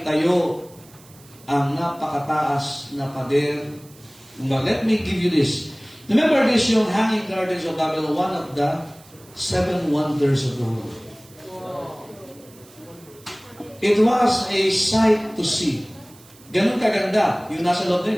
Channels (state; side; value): noise; right; hiss, 25 dB below the sound